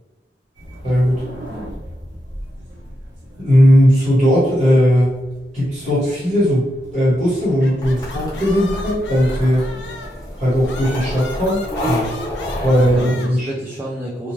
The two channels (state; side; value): normal; both; correlation 0.84